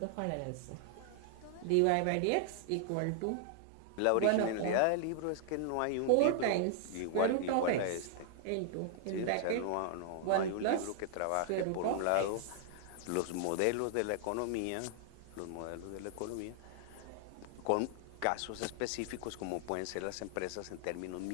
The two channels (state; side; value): different; both; correlation -0.01